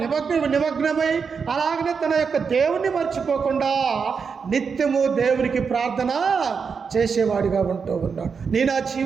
నిమగ్నమై అలాగనే తన యొక్క దేవుణ్ణి మర్చిపోకుండా నిత్యము దేవునికి ప్రార్థన చేసేవాడిగా ఉంటూ ఉన్నాడు. నేను ఆ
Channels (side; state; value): left; quieter; 5.8 dB